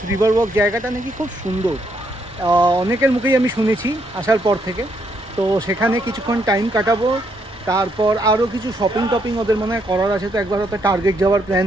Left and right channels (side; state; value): both; normal; correlation 0.74